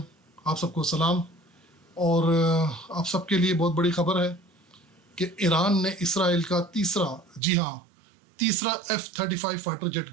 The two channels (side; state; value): left; drops out; at 7.4 s